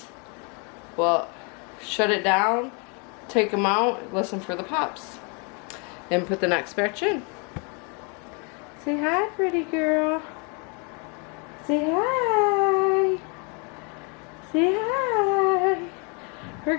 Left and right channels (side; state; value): right; quieter; 34.5 dB